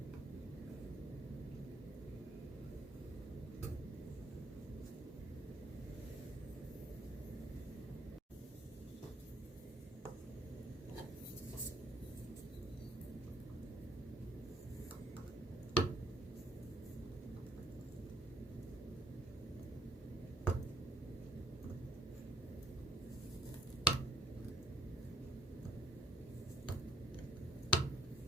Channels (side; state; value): both; normal; correlation 0.64